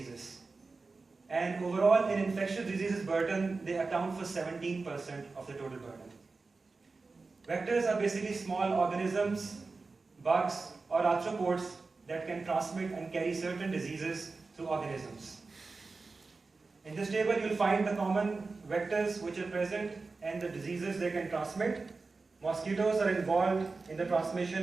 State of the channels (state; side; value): quieter; left; 4.0 dB